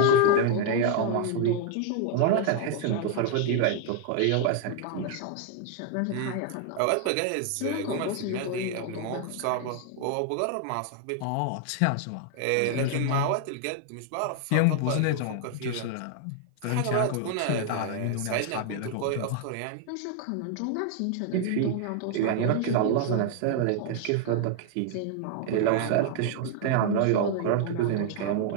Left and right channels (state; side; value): different; both; correlation 0.00